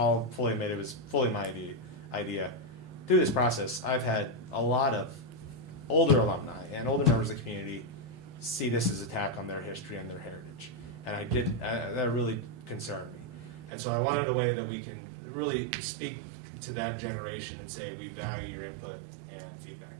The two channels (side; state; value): left; drops out; at 13.7 s